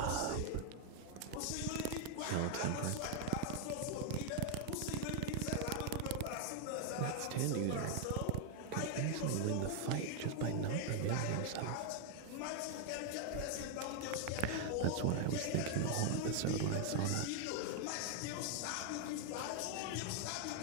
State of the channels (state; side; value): different; both; correlation 0.00